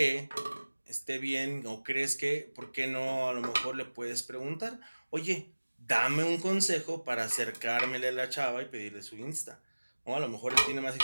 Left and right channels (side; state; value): both; inverted; correlation -1.00